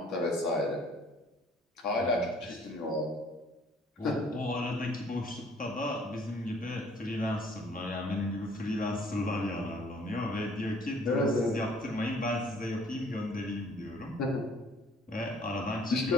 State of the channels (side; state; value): both; normal; correlation 0.58